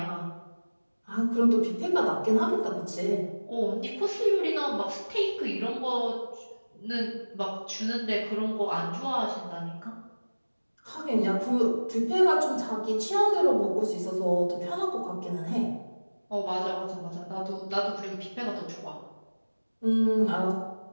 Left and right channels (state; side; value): inverted; both; correlation -1.00